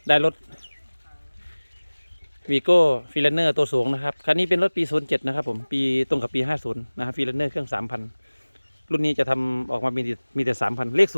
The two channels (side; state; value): both; inverted; correlation -1.00